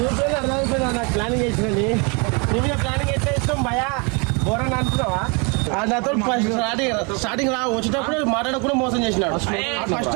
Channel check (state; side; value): quieter; left; 32.1 dB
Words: అర్థమైపోయినా. నాకు ప్లానింగ్ వేసినది నీ మీద ప్లానింగ్ ఎట్లా ఇష్టం భయా ఘోరంగా అనుకున్నావా. నాతో స్టార్టింగ్ వచ్చేటప్పుడు మాట్లాడకుండా మోసం చేసినాడు. ఫస్ట్